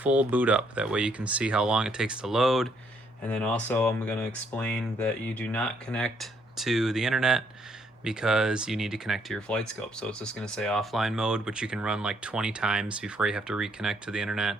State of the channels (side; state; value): both; normal; correlation 0.70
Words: boot up. That way you can see how long it takes to load. And then also I'm going to explain that you do not connect to the internet because you need to connect to your Flightscope. So it's just going to say offline mode, which you can run like 20 times before you have to reconnect to the internet.